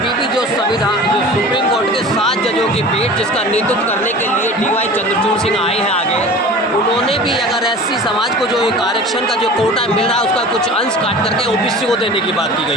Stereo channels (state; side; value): normal; both; correlation 0.39